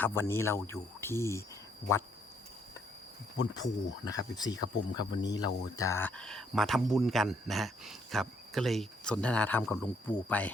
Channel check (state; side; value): normal; both; correlation 0.70